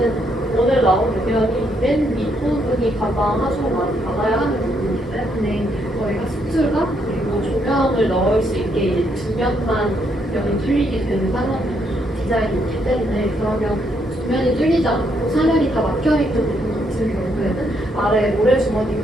오늘 나온 의견이 맨 윗부분이 가장 하수를 많이 받아야 하는 부분이기 때문에 저희가 수트가 그리고 조명을 넣을 수 있게 이제 뒷면만 면이 뚫리게 되는 상황이 디자인이기 때문에 그러면 뒷면이 뚫리지 않고 사면이 다 막혀있는 부분 같은 경우에는 아래 모래주머니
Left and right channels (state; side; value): normal; both; correlation 0.74